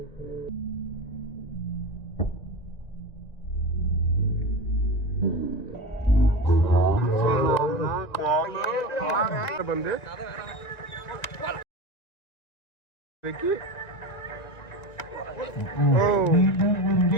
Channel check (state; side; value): late; right; 1.8 ms